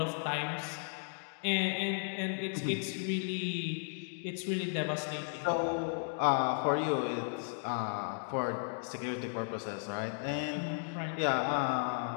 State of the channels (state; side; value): silent; right; digital silence